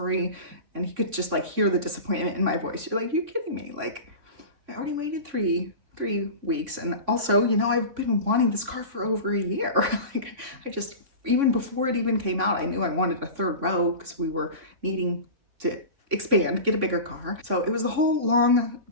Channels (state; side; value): late; left; 3.5 ms